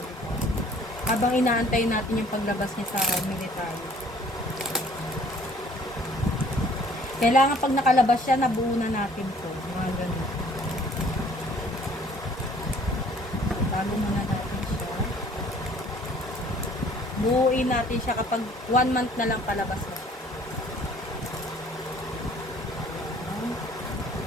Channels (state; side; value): normal; both; correlation 0.56